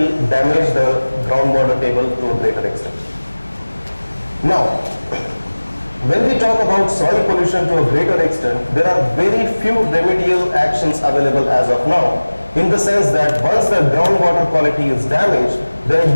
damage the groundwater table to a greater extent. Now, when we talk about soil pollution to a greater extent, there are very few remedial actions available as of now, in the sense that once the groundwater quality is damaged, then it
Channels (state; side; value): inverted; both; correlation -1.00